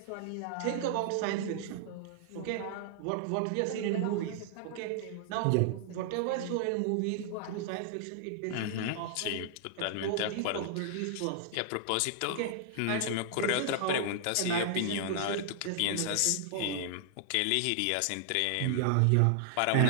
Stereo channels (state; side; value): different; both; correlation -0.01